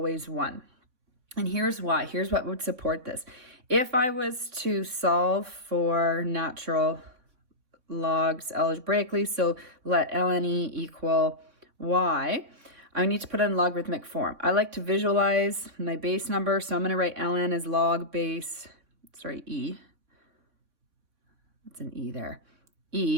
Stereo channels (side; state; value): left; late; 3.8 ms